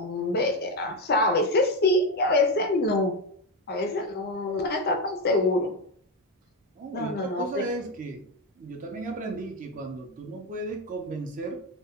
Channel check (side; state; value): both; normal; correlation 0.11